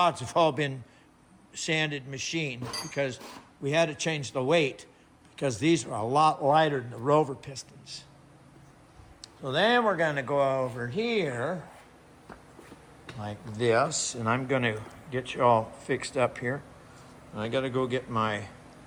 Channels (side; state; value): both; identical; correlation 1.00